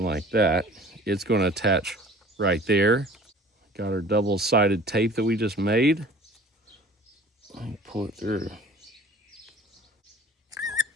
like that. It's going to attach right there. Got our double-sided tape that we just made. Let me pull it through.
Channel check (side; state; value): both; normal; correlation 0.46